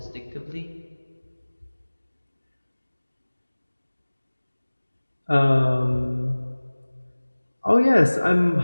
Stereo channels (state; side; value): inverted; both; correlation -1.00